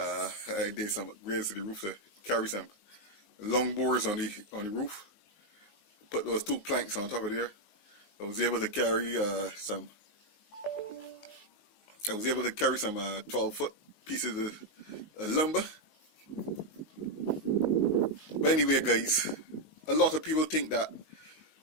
did some upgrades to the roof to carry some long boards on the roof. Put those two planks on top of there. I was able to carry some 12-foot pieces of lumber. But anyway, guys, a lot of people think that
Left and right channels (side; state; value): right; late; 19 ms